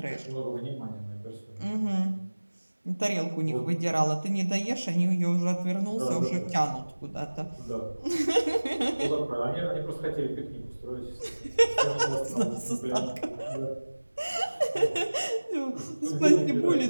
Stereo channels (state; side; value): inverted; both; correlation -1.00